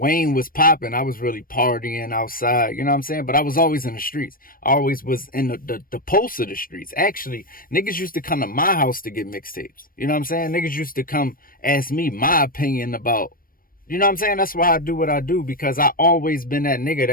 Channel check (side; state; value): right; late; 0.41 ms